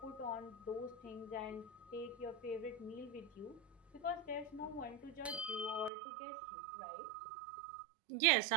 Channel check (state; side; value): drops out; left; at 5.9 s